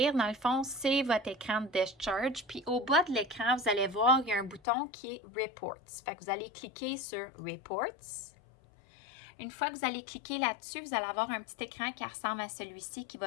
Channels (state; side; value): drops out; right; at 4.6 s